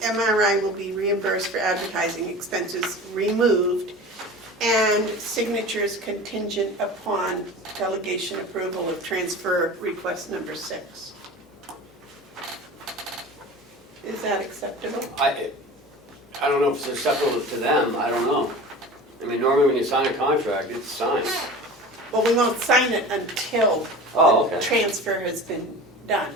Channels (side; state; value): both; normal; correlation 0.36